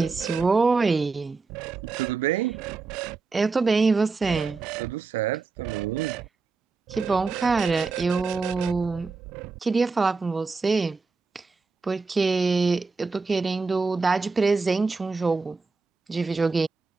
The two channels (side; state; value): left; quieter; 4.3 dB